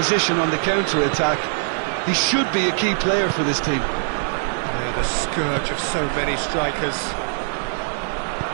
on the counter-attack. He should be a key player for this team. Yeah, the scourge of so many strikers.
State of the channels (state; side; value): silent; left; 59 dB below the other